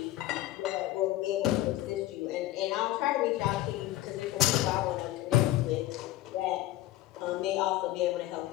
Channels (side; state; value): right; quieter; 15.6 dB